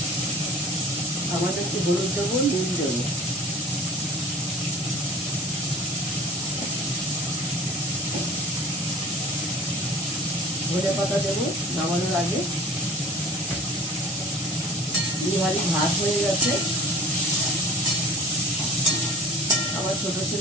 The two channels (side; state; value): both; normal; correlation 0.43